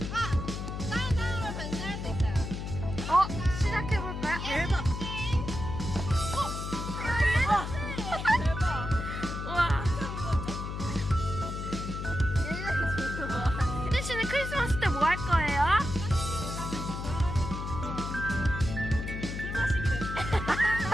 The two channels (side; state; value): left; noise; hum, 5 dB below the sound